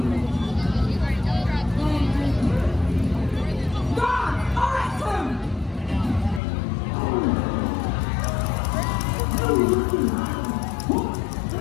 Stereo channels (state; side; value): drops out; right; at 6.4 s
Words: God, arrest him!